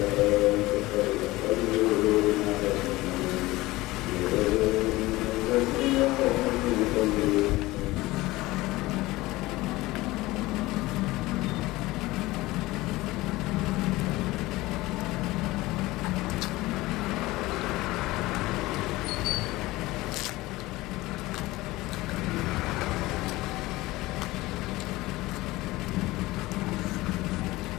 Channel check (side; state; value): right; quieter; 19.4 dB